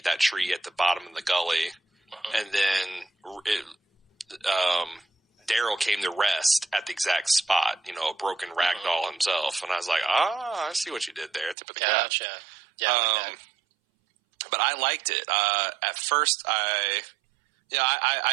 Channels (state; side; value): drops out; left; at 11.6 s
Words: that tree at the bottom of the gully. And then Daryl came to rest at the exact spot, a broken rag doll himself. And I was like, I see what you did there. Tip of the cap. Gotcha. Yeah, but I liked it. At first, I